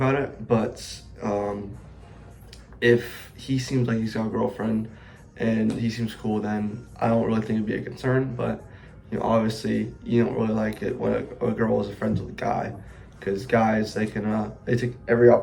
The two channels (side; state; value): both; identical; correlation 1.00